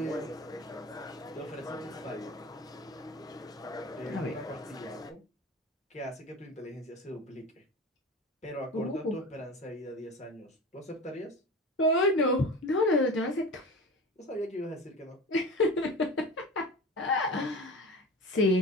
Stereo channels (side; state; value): both; normal; correlation 0.32